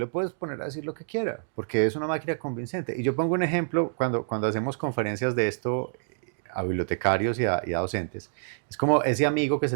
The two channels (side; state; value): left; silent; digital silence